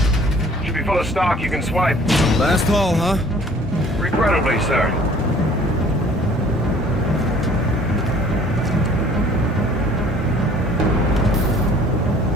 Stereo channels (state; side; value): normal; both; correlation 0.53